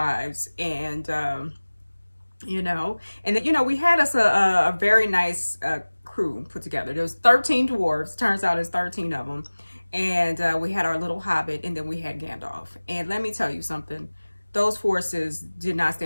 And you know, and you know, we had us a very nice crew put together. There was 13 dwarves. Turns out it's 13 of them. And we had our little hobbit, and then we had Gandalf. And let me tell you something. Those forces did not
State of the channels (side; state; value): both; inverted; correlation -1.00